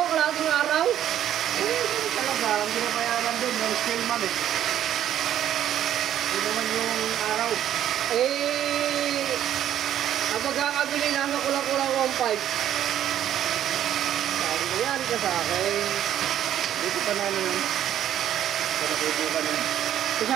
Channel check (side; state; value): left; quieter; 11.1 dB